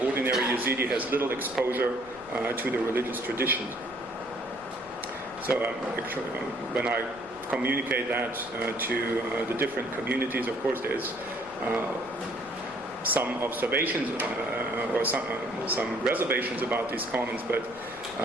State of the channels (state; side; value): noise; left; rumble, 23 dB below the sound